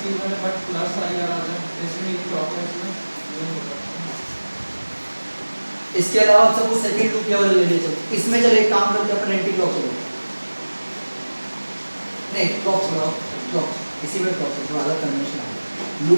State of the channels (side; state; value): both; inverted; correlation -1.00